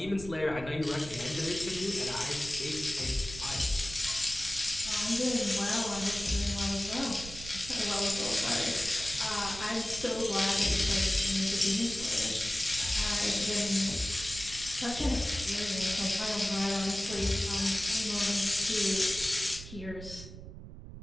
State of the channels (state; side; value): noise; right; rumble, 13 dB below the sound